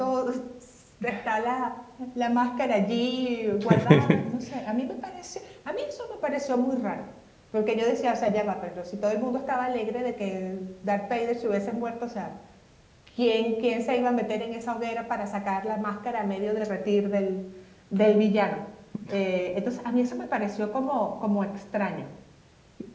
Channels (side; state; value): both; identical; correlation 1.00